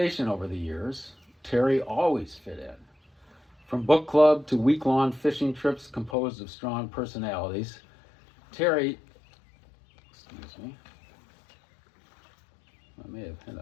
over the years, Terry always fit in. From book club to week-long fishing trips composed of strong personalities, Terry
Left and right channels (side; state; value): right; drops out; at 6.2 s